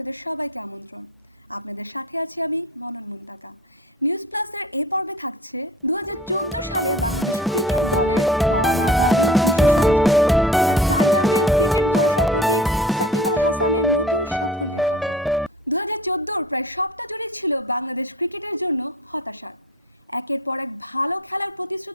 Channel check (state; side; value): normal; both; correlation 0.42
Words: সবাইকে আমন্ত্রণ। আপনাদের সাথে আছি আমি মনন মুন্তাকা। নিউজ প্লাসের এই পর্বে থাকছে 2014 সালে বাংলাদেশ ক্রিকেট দলের পাওয়া না পাওয়ার বিশেষ আয়োজন, আর টাইগারদের ক্রিকেট ভরসার প্রতীক সাকিব আল হাসানের নতুন সাফল্যের কথা। 2014 প্রায় সবটা জুড়ে ছিল বাংলাদেশ ক্রিকেটের জন্য হতাশার। একের পর এক ভালো খেলার